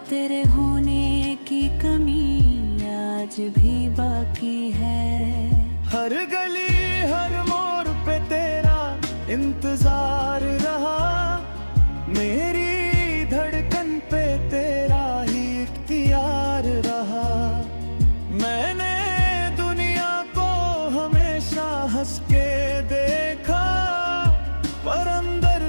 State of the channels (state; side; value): inverted; both; correlation -1.00